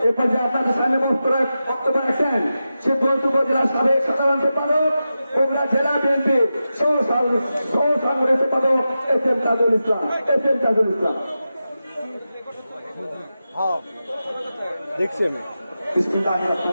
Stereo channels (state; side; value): inverted; both; correlation -0.91